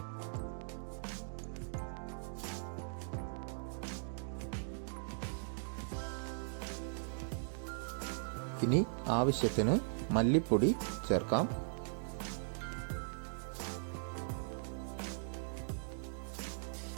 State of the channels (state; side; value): silent; left; digital silence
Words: ഇനി ആവശ്യത്തിന് മല്ലിപ്പൊടി ചേർക്കാം.